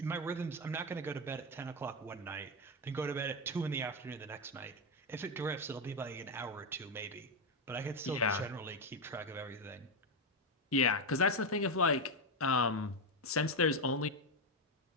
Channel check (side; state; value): both; normal; correlation 0.07